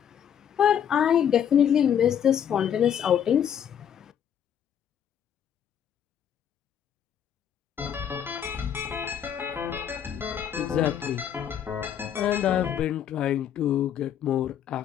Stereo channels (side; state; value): right; quieter; 9.0 dB